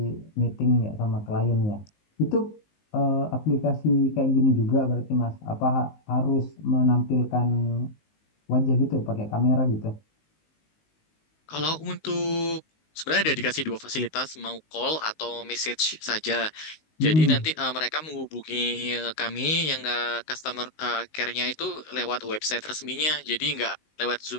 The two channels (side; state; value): right; late; 19 ms